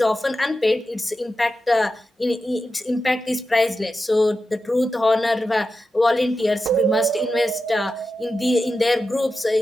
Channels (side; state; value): both; normal; correlation 0.91